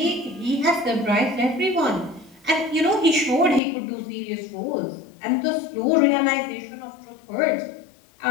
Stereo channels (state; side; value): drops out; right; at 3.6 s